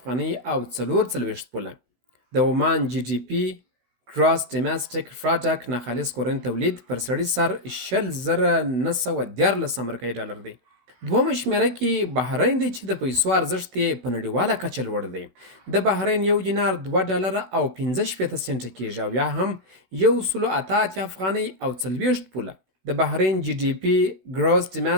او 44 پوله. د عمان جی ډي پی ګراس ډومېسټیک پروډکټ ناخالص کورنی تولید پر سړي سر 20,914 امریکایي ډالر دی. دومه شمیره کې بحرین دی چې د پیسو ارزښت یې په نړیواله کچه لوړ دی. د بحرین 1 دینار 2 ډالره او 65 سنټه کیږي، او یا هم 108 افغانۍ او 40 پوله. د بحرین جی ډي پی ګراس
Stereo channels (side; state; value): left; late; 16 ms